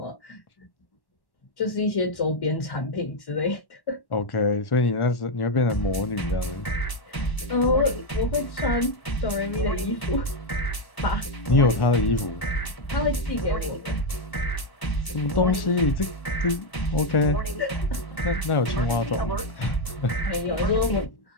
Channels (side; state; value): right; late; 1.1 ms